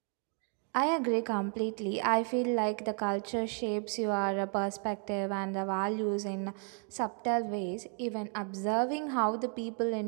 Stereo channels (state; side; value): quieter; left; 39.0 dB